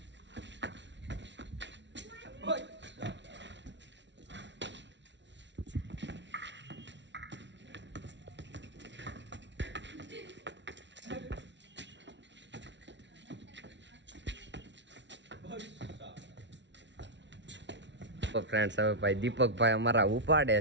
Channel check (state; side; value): late; left; 0.52 ms